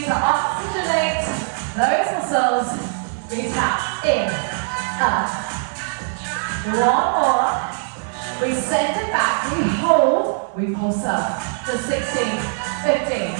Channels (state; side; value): silent; left; 57 dB below the other